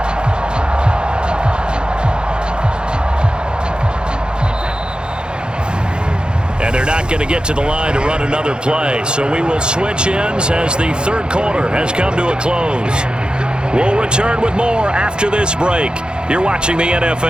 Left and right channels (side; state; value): left; late; 0.049 ms